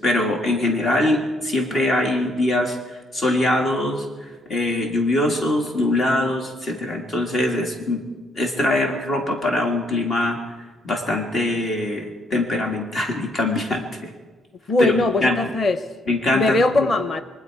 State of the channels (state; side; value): normal; both; correlation 0.70